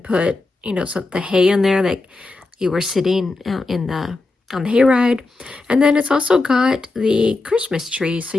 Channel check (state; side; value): quieter; right; 3.4 dB